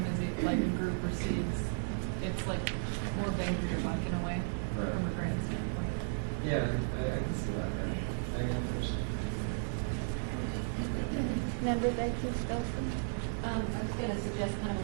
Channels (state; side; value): silent; left; 55 dB below the other